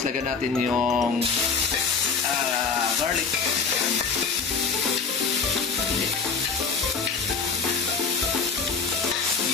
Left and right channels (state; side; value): quieter; right; 5.1 dB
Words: Lagyan natin yung garlic.